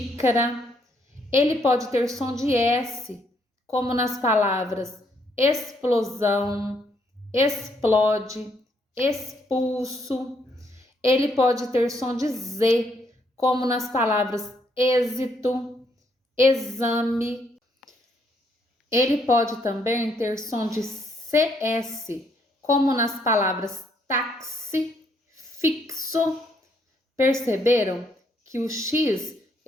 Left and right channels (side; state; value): both; normal; correlation 0.72